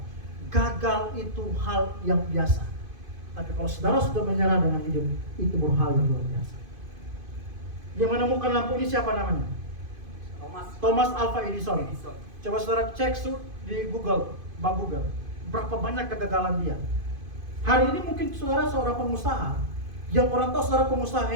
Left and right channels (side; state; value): left; late; 2.5 ms